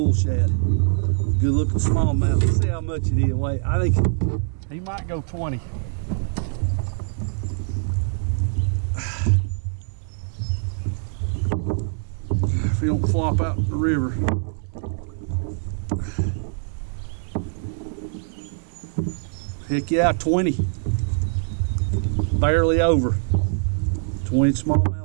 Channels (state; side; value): silent; left; digital silence